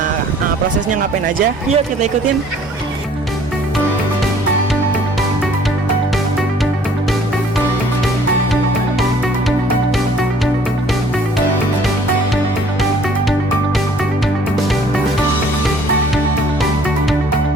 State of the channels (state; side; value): normal; both; correlation 0.56